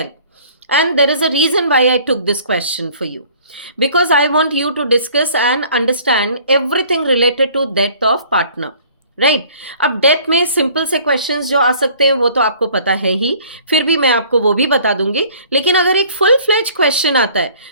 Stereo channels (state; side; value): inverted; both; correlation -0.53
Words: and there is a reason why I took this question for you, because I want you to discuss and understand everything related to death of partner. Right अब death में simple से questions जो आ सकते हैं वो तो आपको पता है ही, फिर भी मैं आपको वो भी बता दूंगी. लेकिन अगर एक फुल फ्लेज क्वेश्चन आता है